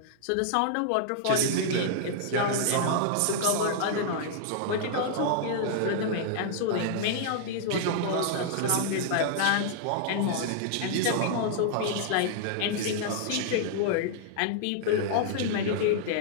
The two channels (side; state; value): both; different; correlation -0.01